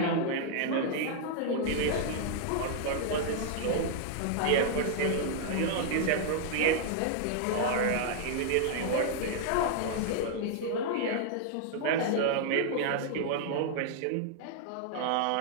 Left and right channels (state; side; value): different; both; correlation 0.00